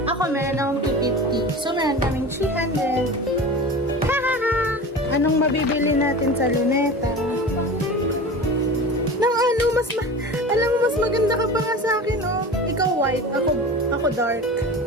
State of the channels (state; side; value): normal; both; correlation 0.33